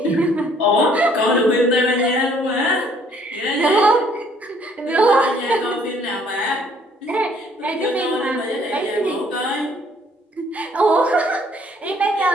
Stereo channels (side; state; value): both; normal; correlation 0.62